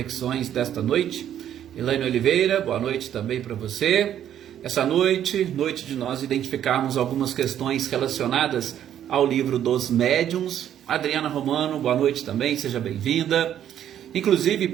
desta noite. Elaine Oliveira, boa noite também para você. Essa noite de nós identificarmos algumas questões relacionadas ao livro dos médiuns. Adriana Romano, boa noite também, seja bem-vinda. Inclusive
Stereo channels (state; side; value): quieter; left; 10.5 dB